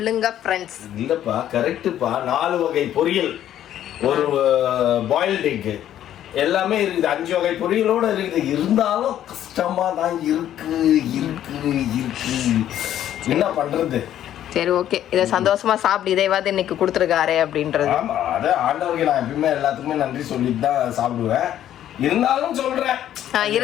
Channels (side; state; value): right; quieter; 11.4 dB